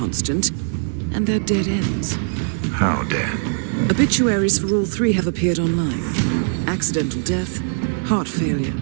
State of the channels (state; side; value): silent; left; digital silence